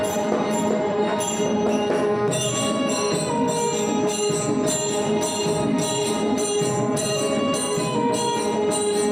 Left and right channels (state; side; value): identical; both; correlation 1.00